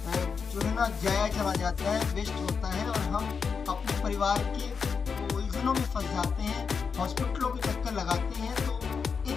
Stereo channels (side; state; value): right; quieter; 5.8 dB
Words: जो है ना ज़ाया चला जाता है, वेस्ट होता है और हम अपने परिवार के उलझनों में फँस जाते हैं, हॉस्पिटलों के चक्कर लगाते हैं। तो